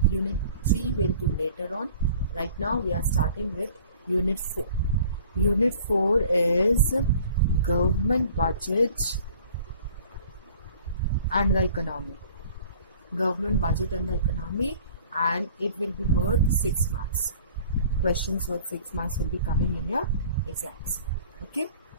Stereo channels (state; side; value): inverted; both; correlation -0.49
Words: Unit 3 we'll do later on. Right now we are starting with unit 4. Unit 4 is government budget and the economy. Government budget and the economy, and it will be worth 6 marks. Questions worth 6 marks will be coming in your exams. Okay.